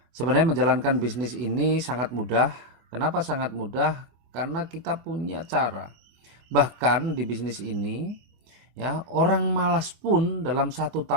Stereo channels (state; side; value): late; left; 24 ms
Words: Sebenarnya menjalankan bisnis ini sangat mudah. Kenapa sangat mudah? Karena kita punya cara. Bahkan di bisnis ini, ya, orang malas pun dalam 1